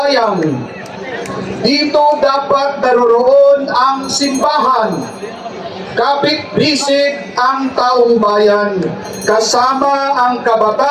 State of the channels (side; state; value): both; identical; correlation 1.00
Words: Dito dapat naroroon ang simbahan. Kapit-bisig ang taong bayan, kasama ang